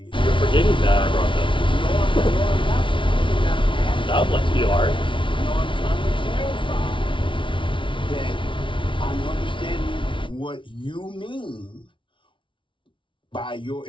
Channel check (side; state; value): right; late; 0.25 ms